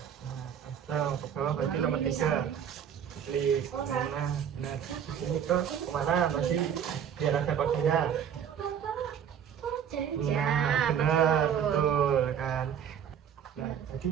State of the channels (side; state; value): left; quieter; 8.4 dB